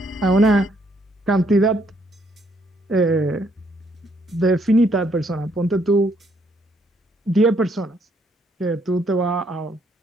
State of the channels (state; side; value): normal; both; correlation 0.70